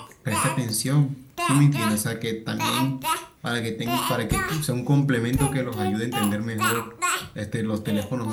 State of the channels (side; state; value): both; identical; correlation 1.00